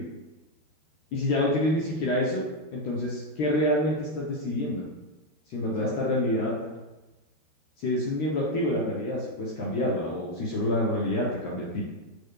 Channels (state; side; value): late; right; 13 ms